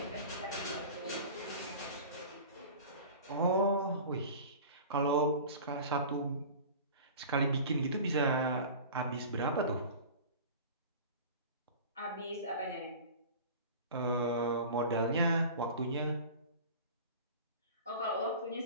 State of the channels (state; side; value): inverted; both; correlation -0.38